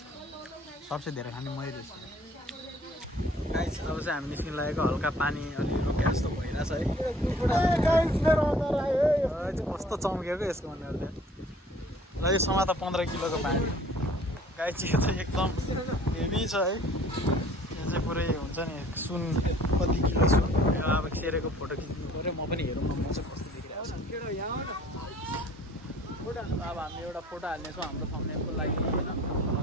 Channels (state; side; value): normal; both; correlation 0.53